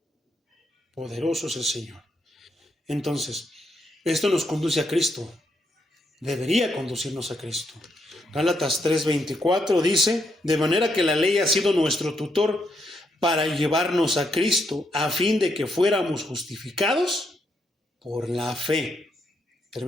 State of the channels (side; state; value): both; normal; correlation 0.77